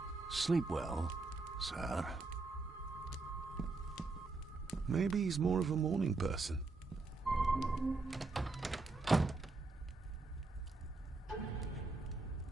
Sleep well, sir. Maybe he's more of a morning person.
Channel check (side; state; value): left; quieter; 3.6 dB